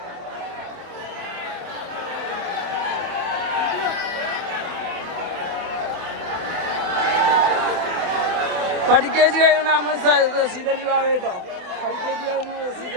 പഠിക്കേജ് കഴിയുന്ന റസീദലി ബാബ കേട്ടോ. പഠിക്കേജ് കഴിയുന്ന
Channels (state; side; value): late; left; 27 ms